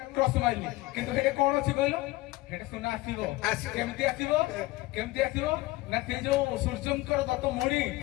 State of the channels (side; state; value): right; quieter; 19.7 dB